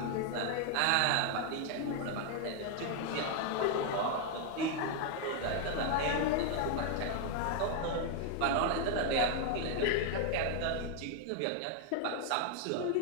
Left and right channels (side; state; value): both; different; correlation 0.00